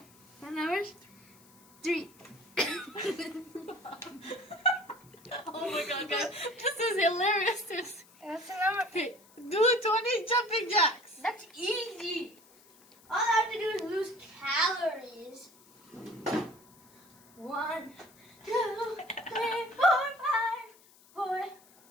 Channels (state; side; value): noise; left; hiss, 27 dB below the sound